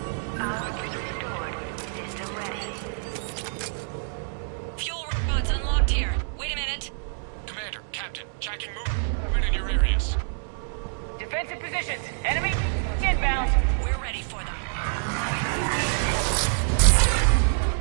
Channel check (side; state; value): left; silent; digital silence